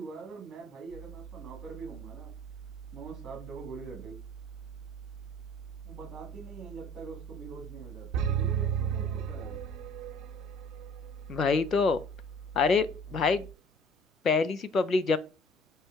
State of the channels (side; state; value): both; normal; correlation 0.52